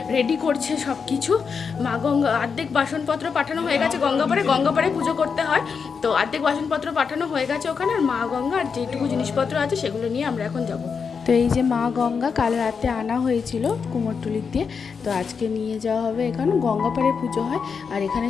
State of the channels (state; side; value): quieter; right; 5.8 dB